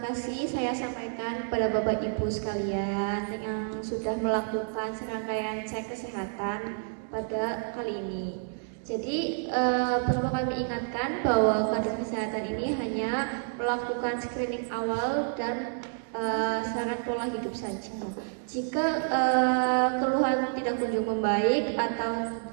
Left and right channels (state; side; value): silent; left; digital silence